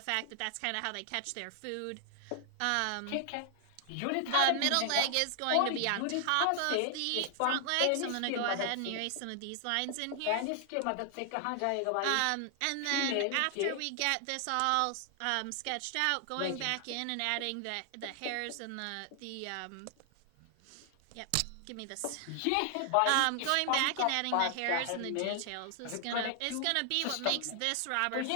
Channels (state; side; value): different; both; correlation 0.00